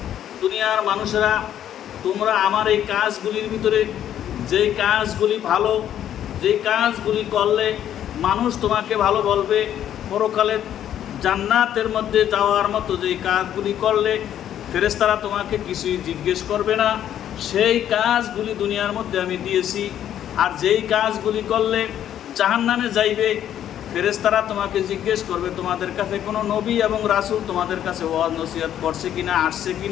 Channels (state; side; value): quieter; right; 10.7 dB